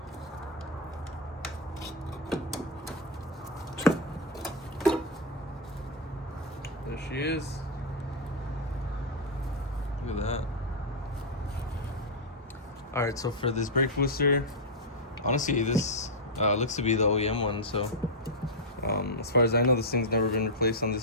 There she is. Look at that. Alright, so for this brake booster, honestly this looks to be the OEM one, so as far as I know, this thing's never been replaced on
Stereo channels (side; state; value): both; normal; correlation -0.03